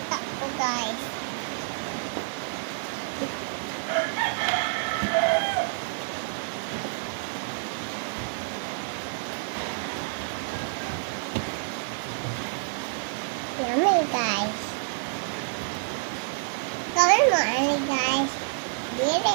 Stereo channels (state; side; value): silent; left; 59 dB below the other